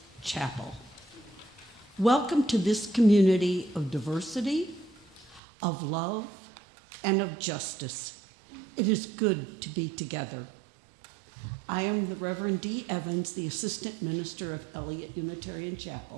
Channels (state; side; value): drops out; left; at 5.4 s